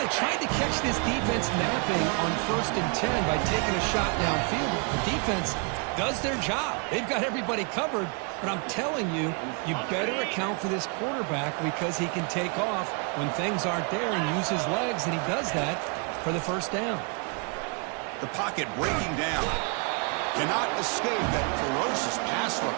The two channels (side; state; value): left; quieter; 36.3 dB